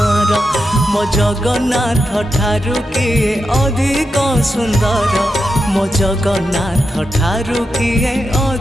मो जगन्नाथ ठारू किए अधिक सुंदर मो जगन्नाथ ठारू किए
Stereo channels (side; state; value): both; normal; correlation 0.87